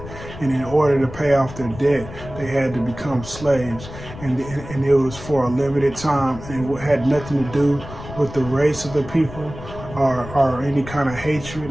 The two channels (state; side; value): noise; left; rumble, 13 dB below the sound